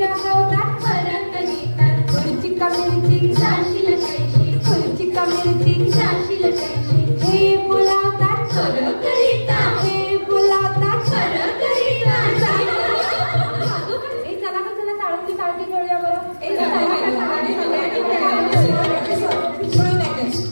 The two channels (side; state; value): both; inverted; correlation -1.00